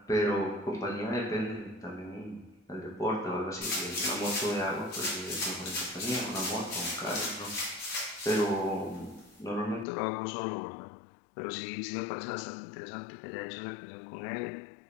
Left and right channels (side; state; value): right; drops out; at 9.9 s